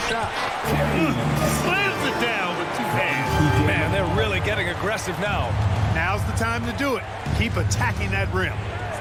shot. Slams it down with 2 hands. Man, they're really getting aggressive now. Now's the time to do it. Keep attacking that rim.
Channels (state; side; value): identical; both; correlation 1.00